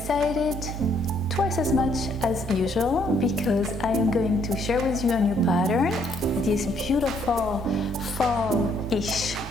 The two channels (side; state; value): both; normal; correlation 0.68